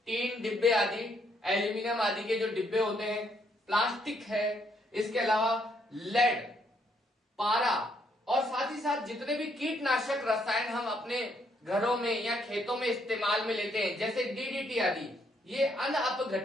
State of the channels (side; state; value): both; normal; correlation 0.72